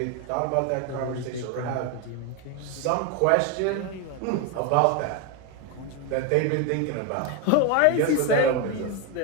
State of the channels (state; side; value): different; both; correlation 0.02